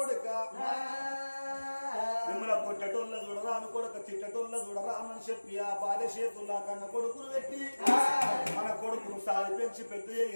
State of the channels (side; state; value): both; inverted; correlation -1.00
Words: మిమ్మల్ని కొట్టటోళ్ళ చూడరా అని కొడుక తిట్టటోళ్ళ చూడరా అని చెప్పి ఆ భార్య చేతుల్లా కన్న కొడుకును పెట్టి మన కొడుకును సాది పెంచి పెద్ద